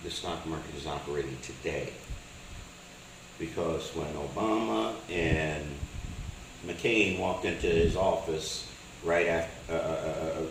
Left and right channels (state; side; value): identical; both; correlation 1.00